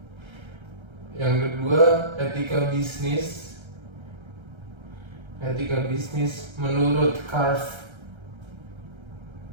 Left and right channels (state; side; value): late; left; 1.3 ms